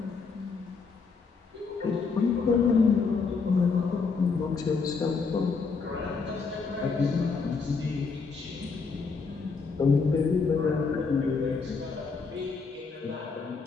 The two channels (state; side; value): quieter; right; 4.8 dB